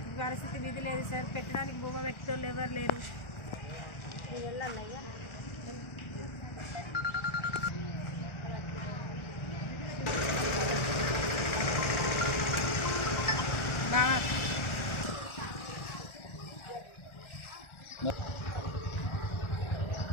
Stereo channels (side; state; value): right; late; 1.4 ms